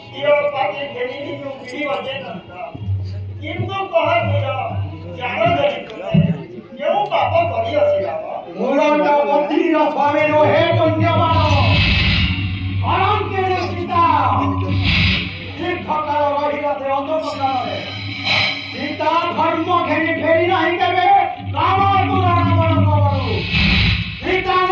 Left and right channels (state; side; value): identical; both; correlation 1.00